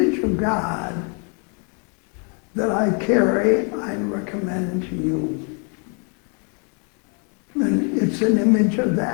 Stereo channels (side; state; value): right; quieter; 38.2 dB